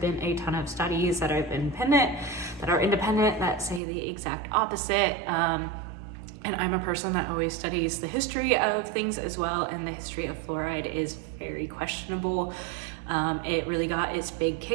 a ton of studies that are independent that say the exact opposite. And I'm a person that always studies the history of things as well, and the history of fluoride is very questionable. It really got its big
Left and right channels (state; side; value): drops out; left; at 3.8 s